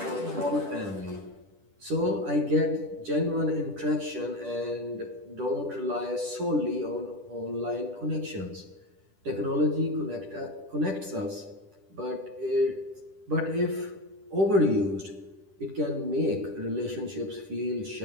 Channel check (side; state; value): left; late; 10 ms